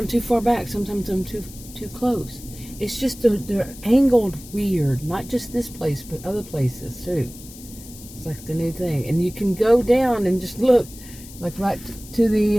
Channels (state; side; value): noise; left; hiss, 18 dB below the sound